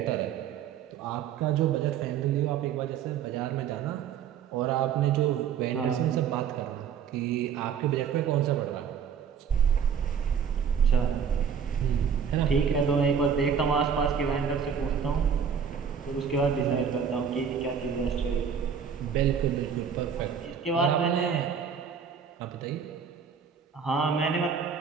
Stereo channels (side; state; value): left; quieter; 7.2 dB